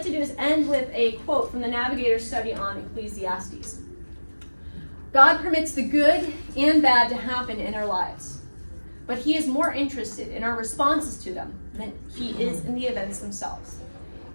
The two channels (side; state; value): both; inverted; correlation -1.00